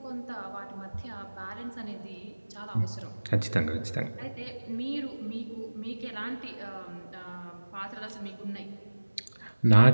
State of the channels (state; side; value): inverted; both; correlation -1.00